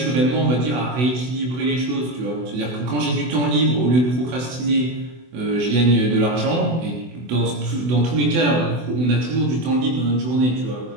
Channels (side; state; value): left; late; 24 ms